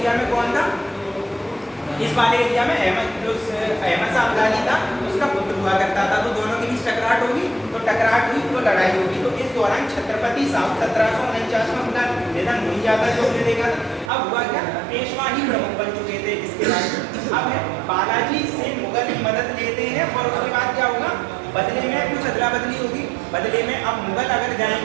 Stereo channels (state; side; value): drops out; left; at 14.1 s